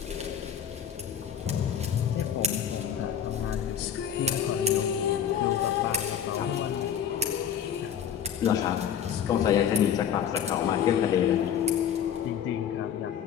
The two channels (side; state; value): right; quieter; 8.7 dB